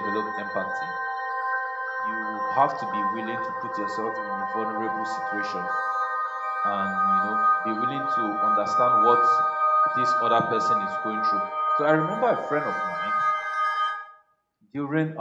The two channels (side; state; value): both; identical; correlation 1.00